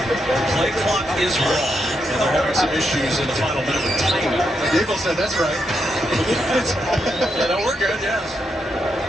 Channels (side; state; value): both; normal; correlation 0.81